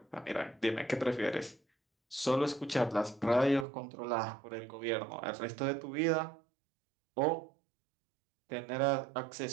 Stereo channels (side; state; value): left; drops out; at 3.7 s